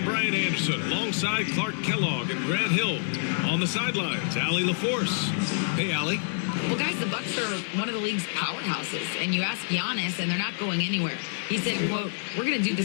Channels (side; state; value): right; silent; digital silence